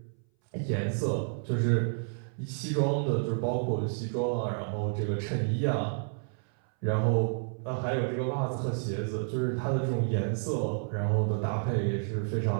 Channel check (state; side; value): silent; left; 58 dB below the other